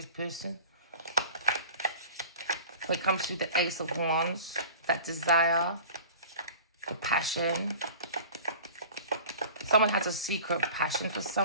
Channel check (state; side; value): inverted; both; correlation -0.41